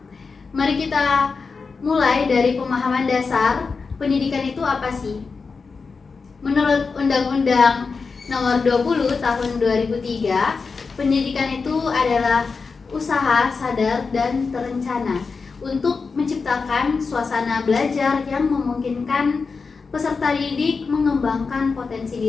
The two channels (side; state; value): right; quieter; 4.7 dB